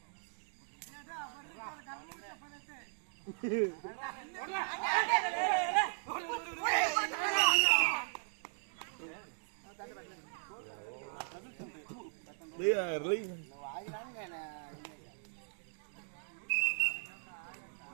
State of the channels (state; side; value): silent; left; digital silence